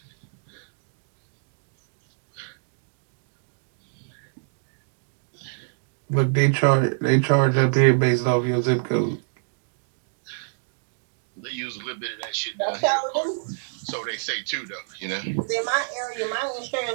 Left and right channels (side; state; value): left; silent; digital silence